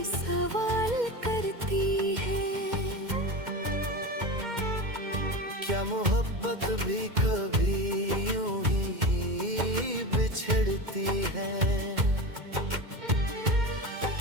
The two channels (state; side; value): late; left; 2.1 ms